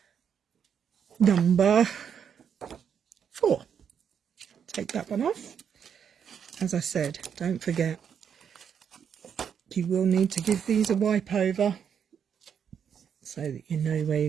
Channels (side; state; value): left; quieter; 7.7 dB